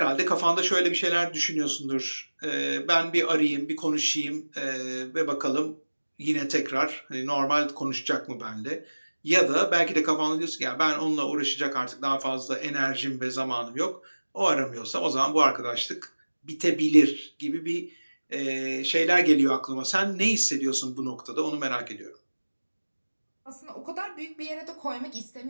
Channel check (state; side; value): inverted; both; correlation -1.00